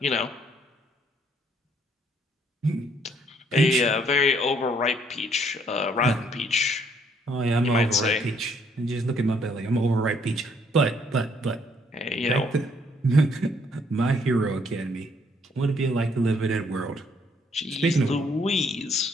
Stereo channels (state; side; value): normal; both; correlation 0.67